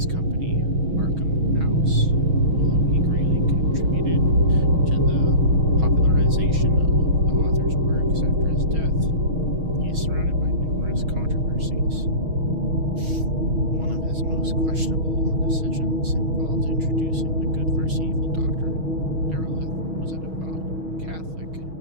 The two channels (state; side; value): late; left; 6.3 ms